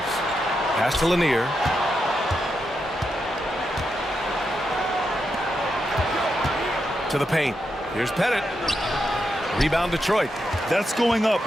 Pass to Lanier. To the paint. Here's Pettit. Rebound Detroit. That's going up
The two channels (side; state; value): both; normal; correlation 0.85